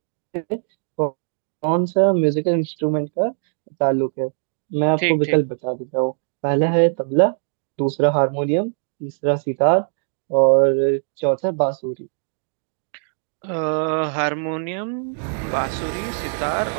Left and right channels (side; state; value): left; silent; digital silence